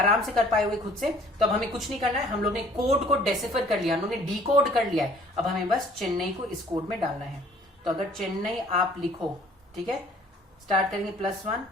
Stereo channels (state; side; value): normal; both; correlation 0.54